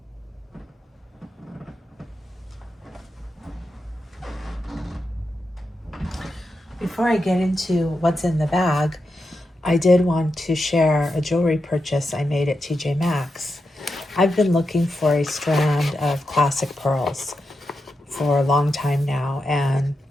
Before I get into what's in the bag, I did want to share a jewelry purchase I made at TJ Maxx. I've been looking for a strand of classic pearls for a long time now and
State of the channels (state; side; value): normal; both; correlation 0.87